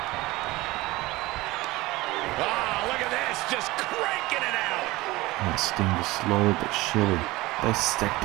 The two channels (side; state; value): left; quieter; 19.8 dB